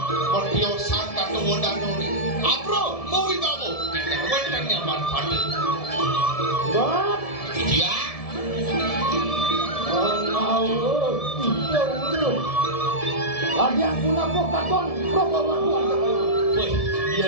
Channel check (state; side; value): late; right; 1.7 ms